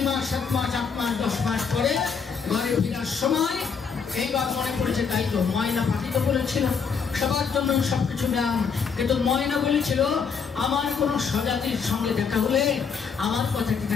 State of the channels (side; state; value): right; quieter; 6.0 dB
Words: মাস 7 মাস 8 মাস 10 মাস পরে ঘরে ফেরার সময় এইবার মনে পড়েছে, তাই তো ময়না পাখি তো বলেছিল সবার জন্য সবকিছু দাম, কিন্তু ময়না বলেছিল আমার কোনো স্বজাতির সঙ্গে দেখা হলে আমার কথাটি